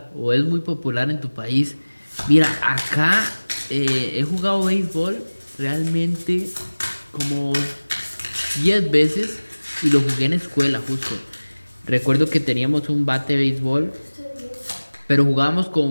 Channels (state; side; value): inverted; both; correlation -1.00